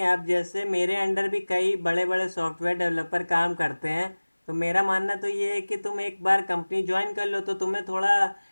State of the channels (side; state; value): both; inverted; correlation -1.00